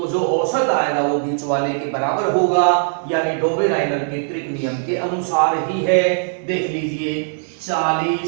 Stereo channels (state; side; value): silent; left; digital silence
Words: जो औसत आएगा वो बीच वाले के बराबर होगा, यानी डोवेराइनर के त्रिक नियम के अनुसार ही है। देख लीजिए